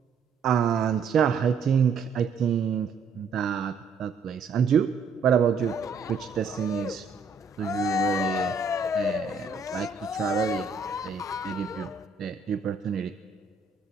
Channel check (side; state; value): left; quieter; 4.7 dB